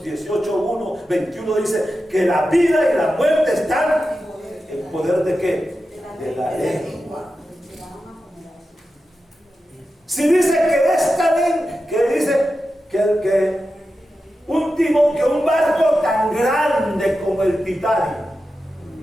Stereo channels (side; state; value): both; normal; correlation 0.91